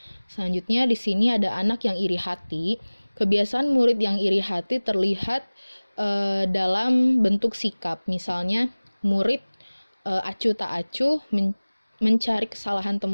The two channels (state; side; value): inverted; both; correlation -1.00